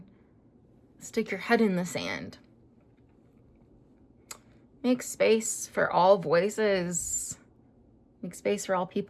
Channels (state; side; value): identical; both; correlation 1.00